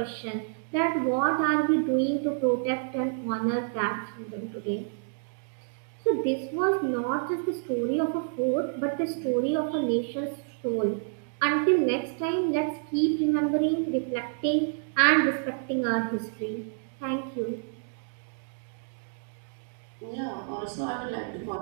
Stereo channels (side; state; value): left; silent; digital silence